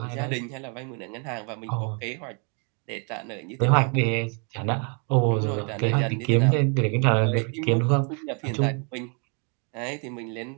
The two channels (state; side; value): quieter; left; 38.1 dB